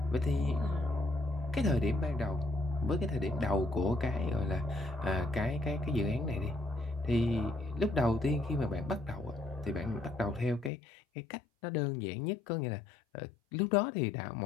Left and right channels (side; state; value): right; drops out; at 10.7 s